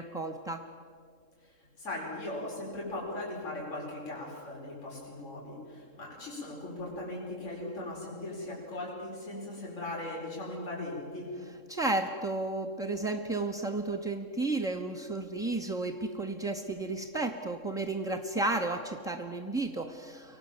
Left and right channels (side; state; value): right; late; 3.7 ms